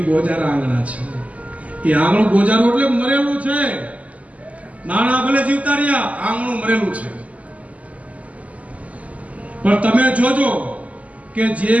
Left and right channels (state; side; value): late; left; 0.070 ms